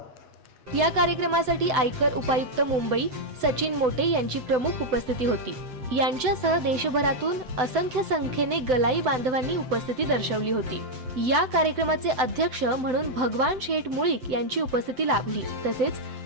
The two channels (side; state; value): left; late; 7.9 ms